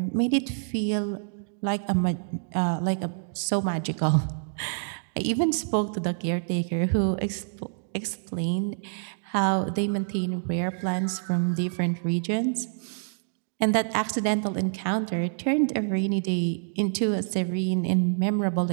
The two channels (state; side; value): silent; left; digital silence